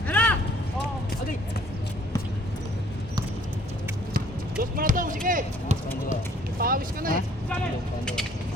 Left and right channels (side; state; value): both; normal; correlation 0.58